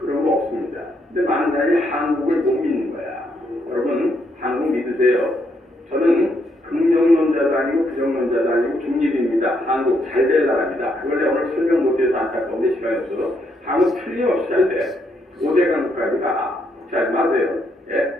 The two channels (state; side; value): normal; both; correlation 0.75